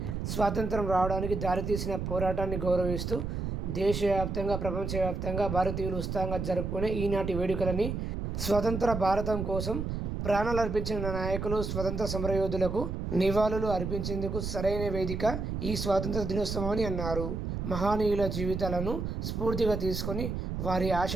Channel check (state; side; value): noise; right; rumble, 3 dB below the sound